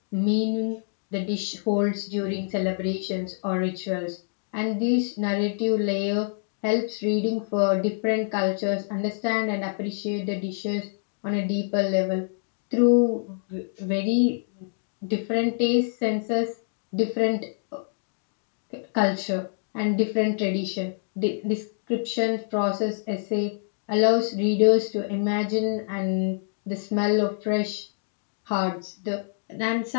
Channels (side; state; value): right; silent; digital silence